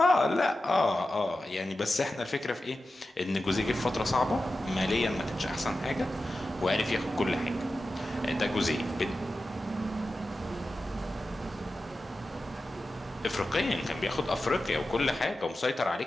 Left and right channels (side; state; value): both; normal; correlation 0.93